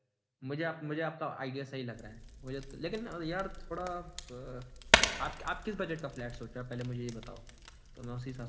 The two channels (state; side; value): identical; both; correlation 1.00